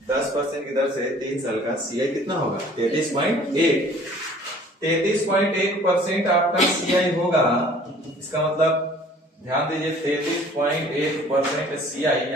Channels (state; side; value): normal; both; correlation 0.52